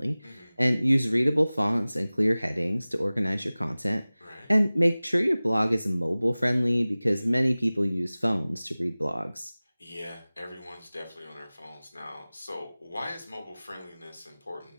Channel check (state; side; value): inverted; both; correlation -0.99